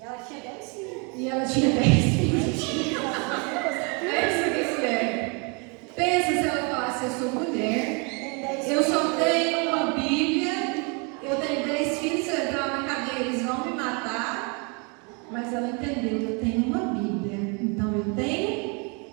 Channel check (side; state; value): left; quieter; 33.2 dB